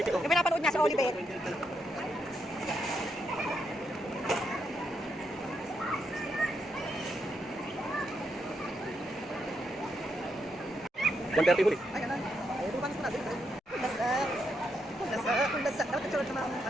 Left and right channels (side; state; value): both; normal; correlation 0.80